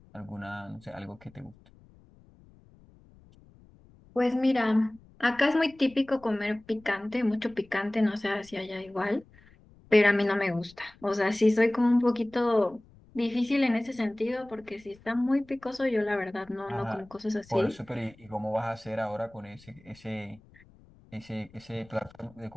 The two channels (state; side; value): noise; left; rumble, 26 dB below the sound